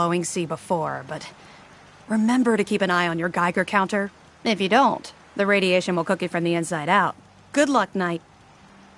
sea before, but remember to keep an eye on your Geiger counter. If you don't, the radiation will cook you from the inside out. Good luck, Knight.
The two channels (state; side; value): identical; both; correlation 1.00